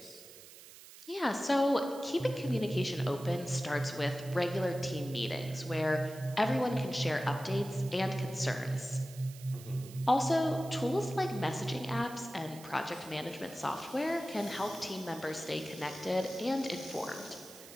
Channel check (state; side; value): noise; right; hiss, 18 dB below the sound